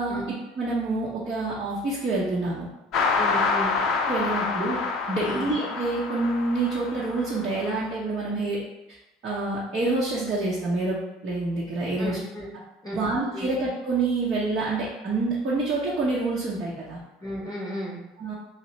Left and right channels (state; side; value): normal; both; correlation 0.48